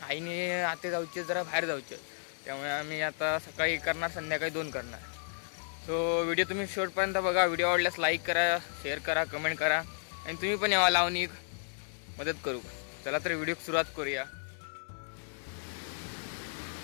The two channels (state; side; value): silent; right; 56 dB below the other